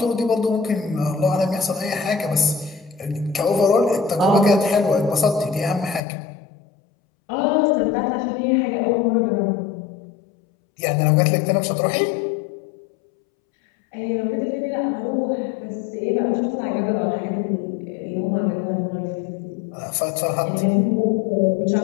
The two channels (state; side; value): drops out; right; at 6.0 s